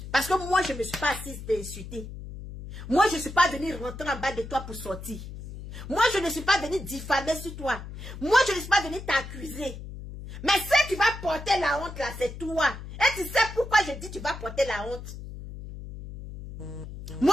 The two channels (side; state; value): left; noise; hum, 11 dB below the sound